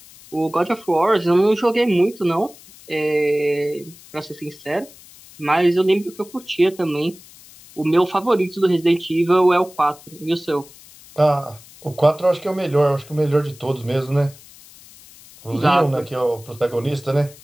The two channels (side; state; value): left; noise; hiss, 22 dB below the sound